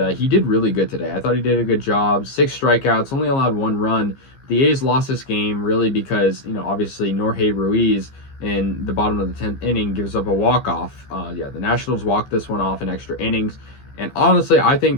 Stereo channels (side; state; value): right; late; 15 ms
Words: he did really good today. I thought he did a good job. 6 strikeouts, only allowed 1 run. The A's lost this game really because, obviously Jorge Ruiz in the bottom of the 10th inning gives up a walk-off. The Nationals walked this one off in extra innings. And honestly, I